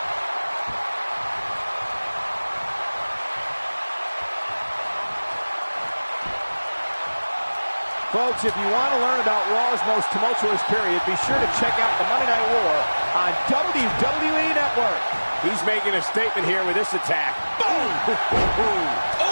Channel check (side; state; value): both; inverted; correlation -1.00